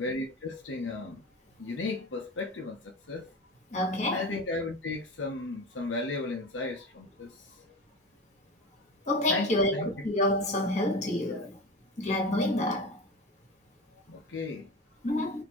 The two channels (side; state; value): both; normal; correlation 0.29